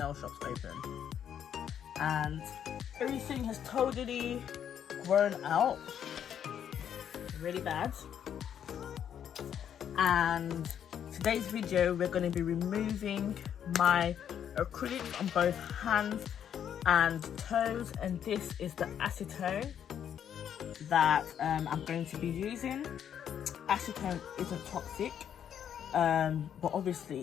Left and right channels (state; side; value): quieter; right; 9.1 dB